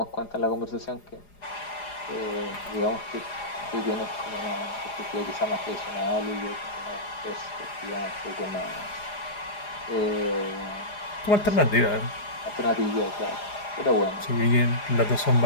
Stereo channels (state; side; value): late; right; 4.9 ms